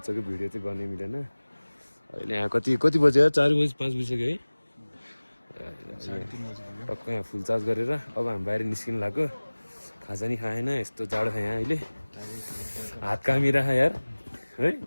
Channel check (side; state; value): both; inverted; correlation -1.00